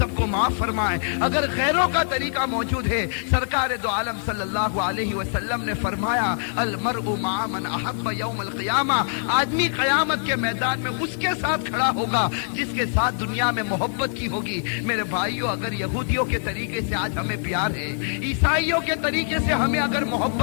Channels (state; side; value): silent; right; digital silence